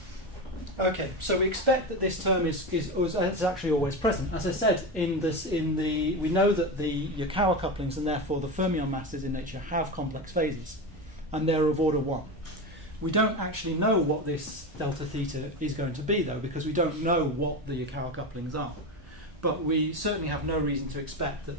Okay, so we expect that this term is actually always present. As I said, we know that the Yukawa couplings and therefore the fermion masses in nature have complex phases, and they're of order 1. We don't actually know what this delta theta is going to be, though, because we don't know what the Yukawa couplings are. But we certainly have no reason to expect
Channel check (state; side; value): normal; both; correlation 0.20